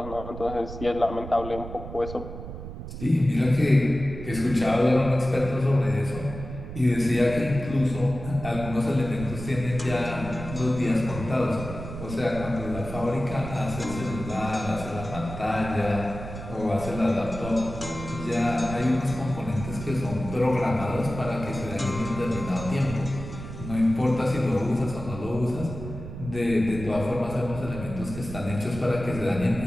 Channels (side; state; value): right; noise; rumble, 10 dB below the sound